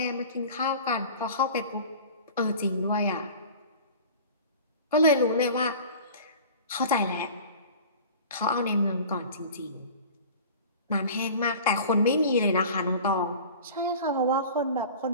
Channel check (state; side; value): inverted; both; correlation -0.40